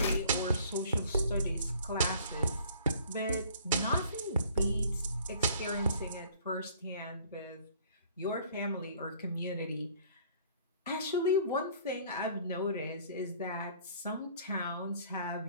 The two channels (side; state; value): both; inverted; correlation -0.55